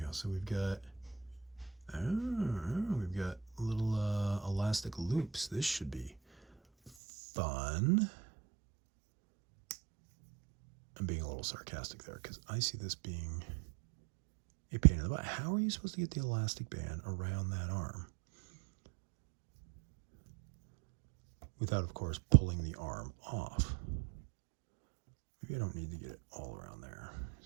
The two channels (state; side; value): drops out; left; at 6.9 s